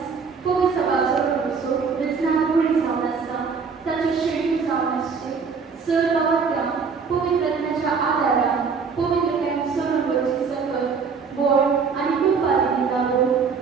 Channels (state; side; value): quieter; left; 5.5 dB